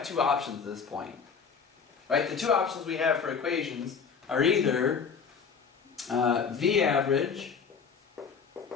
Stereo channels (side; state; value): right; quieter; 6.1 dB